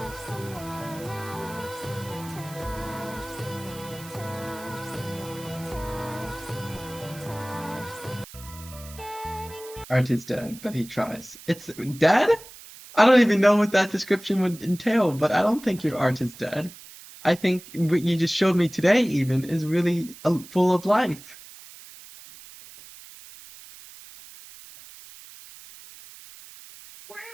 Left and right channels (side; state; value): right; noise; hiss, 18 dB below the sound